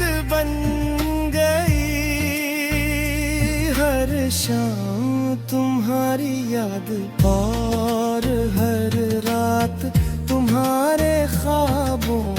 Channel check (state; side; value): identical; both; correlation 1.00